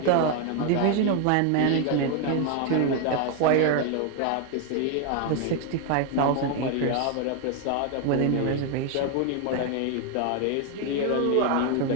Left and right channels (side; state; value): both; different; correlation 0.01